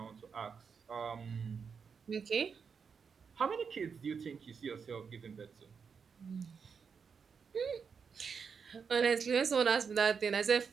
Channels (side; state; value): left; quieter; 6.1 dB